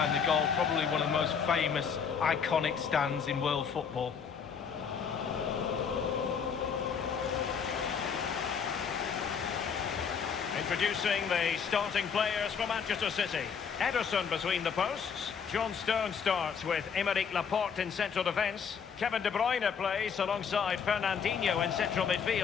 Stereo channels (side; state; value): right; quieter; 6.7 dB